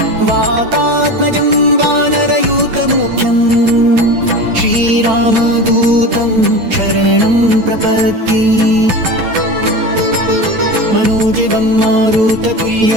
वातात्मजं वानरयूतमुख्यं श्रीरामदूतं शरणं प्रपद्ये। मनोजवं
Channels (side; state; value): left; late; 8.9 ms